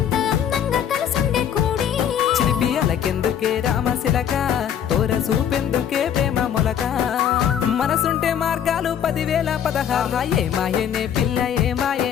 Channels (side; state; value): right; quieter; 9.1 dB